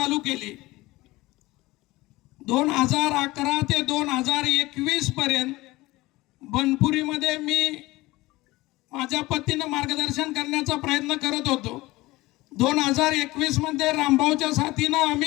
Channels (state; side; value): quieter; right; 19.9 dB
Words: केली. 2011 ते 2021 पर्यंत बनपुरीमध्ये मी माझ्या पतीनं मार्गदर्शन करण्याचा प्रयत्न करत होतो. 2021 मध्ये रामभाऊच्या साथीनं